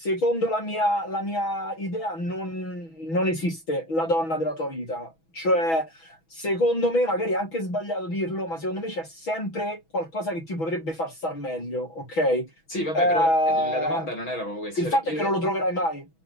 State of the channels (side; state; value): right; late; 6.1 ms